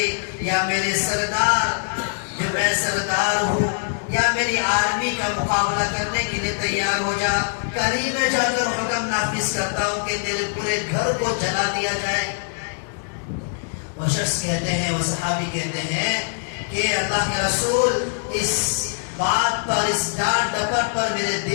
یا میرے سردار جو میں سردار ہوں یا میری آرمی کا مقابلہ کرنے کے لیے تیار ہو جا، کہیں میں جا کر حکم نافذ کرتا ہوں کہ تیرے پورے گھر کو جلا دیا جائے۔ وہ شخص کہتے ہیں، وہ صحابی کہتے ہیں کہ اللہ کے رسول اس بات پر، اس ڈانٹ ڈپٹ پر میرے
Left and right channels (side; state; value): right; silent; digital silence